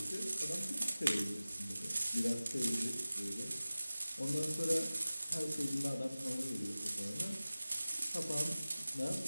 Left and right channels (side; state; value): both; inverted; correlation -0.97